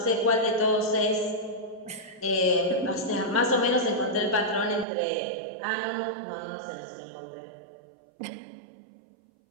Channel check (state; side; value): drops out; left; at 4.9 s